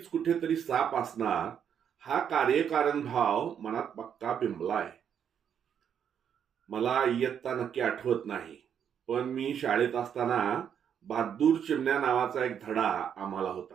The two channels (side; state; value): left; quieter; 8.4 dB